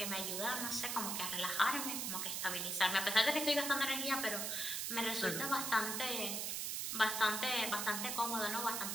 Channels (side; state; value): right; noise; hiss, 1 dB below the sound